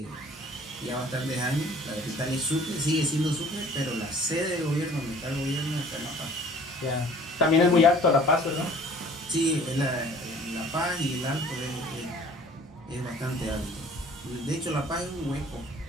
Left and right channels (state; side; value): normal; both; correlation 0.50